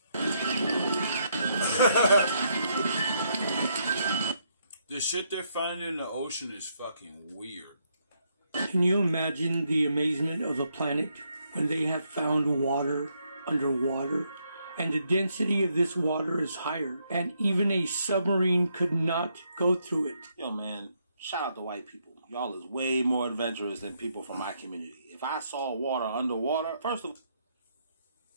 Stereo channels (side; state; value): both; inverted; correlation -0.76